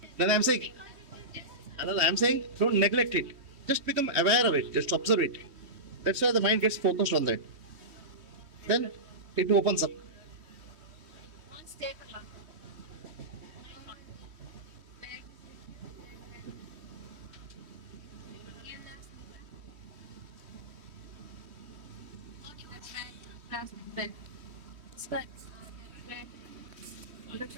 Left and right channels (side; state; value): left; late; 3.1 ms